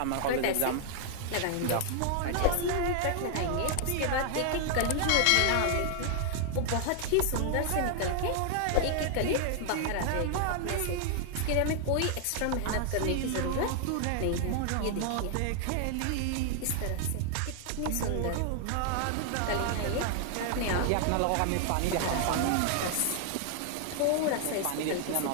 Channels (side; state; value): both; different; correlation 0.00